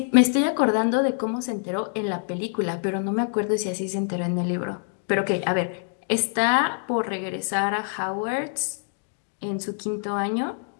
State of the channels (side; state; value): right; silent; 60 dB below the other